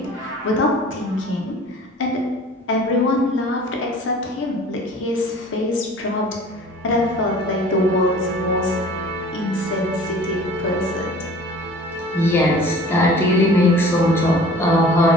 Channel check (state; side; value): normal; both; correlation 0.46